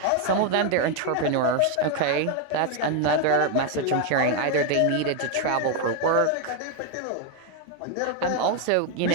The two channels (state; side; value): different; both; correlation 0.01